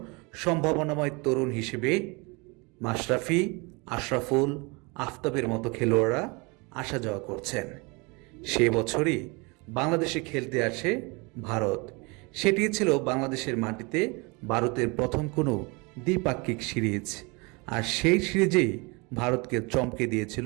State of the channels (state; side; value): quieter; left; 28.4 dB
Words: সম্ভাবনাময় তরুণ হিসেবে মাশরাফি, আশরাফুল, আফতাবের মতো খেলোয়াড়রা আসা যাওয়া করছেন। সে বছরই বাংলাদেশে খেলতে আসে ভারত। সেটি ছিল বাংলাদেশের মাটিতে ভারতের প্রথম কোনো দ্বিপাক্ষিক সিরিজ, আর সেই সিরিজেই ভারতকে চমকে দিয়েছিল